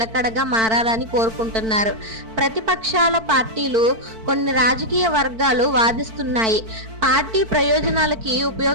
మారాలని కోరుకుంటున్నారు. ప్రతిపక్షాల పార్టీలు, కొన్ని రాజకీయ వర్గాలు వాదిస్తున్నాయి, పార్టీ ప్రయోజనాలకి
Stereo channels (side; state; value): left; late; 4.5 ms